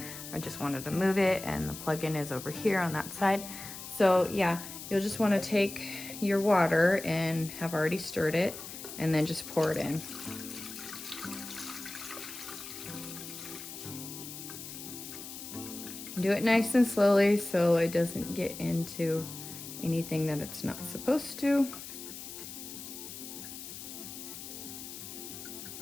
I just wanted to move it, and the plug-in is over here on that side. So yeah, you'll just want to take your water and have already stirred it and then just pour it in. Do it nice and slowly so it doesn't get into anything that it's not supposed to.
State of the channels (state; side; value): noise; left; hiss, 11 dB below the sound